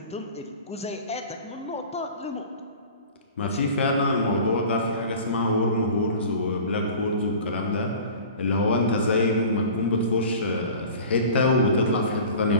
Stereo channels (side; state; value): both; inverted; correlation -0.40